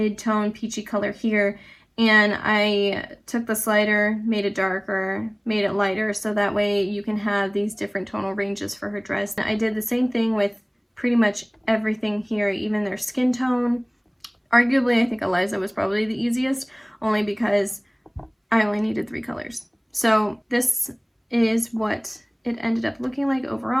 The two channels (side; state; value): both; identical; correlation 1.00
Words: peachy color here, and I took the slider, made it darker, made it lighter, so that way you can have these different tonal ranges for her dress. I did the same thing with pretty much everything here, even their skin tone. Arguably, I think Eliza was probably the easiest, only because I only needed 3 colors. So this is what it ended up looking like